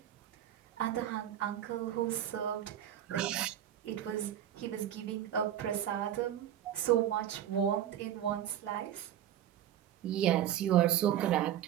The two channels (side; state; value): left; quieter; 11.0 dB